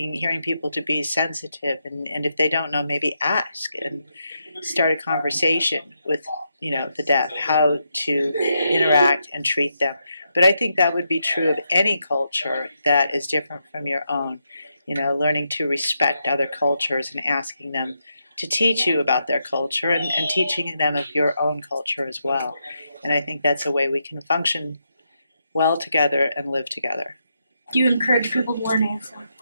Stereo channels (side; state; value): both; inverted; correlation -0.82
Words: people to be sensitive, and if they don't know, maybe ask and start a conversation with, the deaf, how to interact and treat them. But I think that would be true of any culture that is different from your own. Learning to respect other cultures and asking them to teach you about their culture and teaching them of your own culture as well. And I think that's a way we can function well together and live together. Do you encourage people to learn ASL?